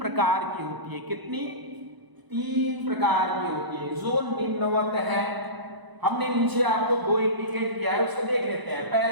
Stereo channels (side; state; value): left; late; 1.0 ms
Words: की होती है। कितनी? 3 प्रकार की होती है, जो निम्नवत है। हमने नीचे आपको 2 इंडिकेट किया है, उसको देख लेते हैं।